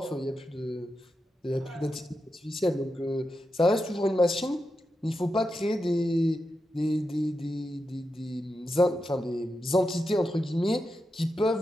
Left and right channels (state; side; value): normal; both; correlation 0.88